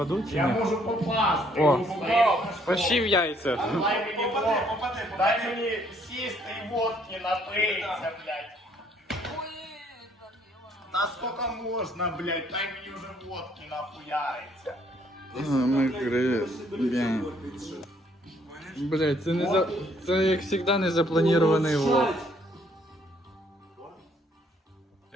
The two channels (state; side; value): normal; both; correlation 0.66